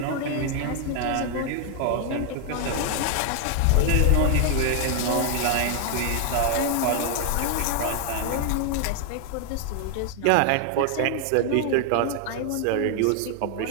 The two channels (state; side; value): different; both; correlation 0.00